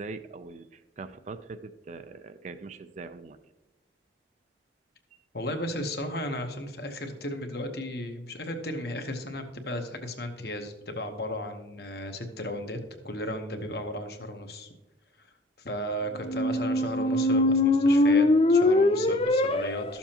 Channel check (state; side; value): normal; both; correlation 0.49